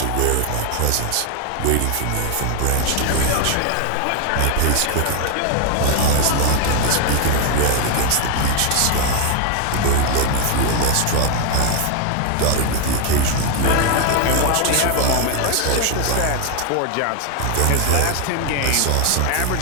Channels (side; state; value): both; different; correlation 0.01